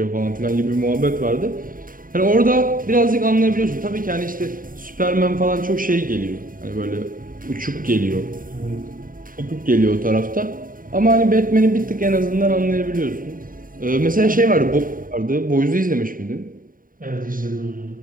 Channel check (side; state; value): left; late; 0.40 ms